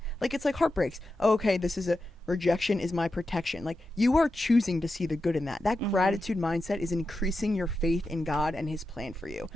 Like, it's like heartbreaks. Oh, okay, this is a rejection is my protection. Like, you are choosing to see the good in that. That gratitude mindset is increasing your faith in God and his plan for you.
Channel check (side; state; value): both; normal; correlation 0.90